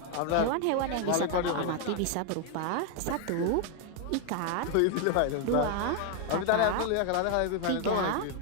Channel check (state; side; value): different; both; correlation 0.00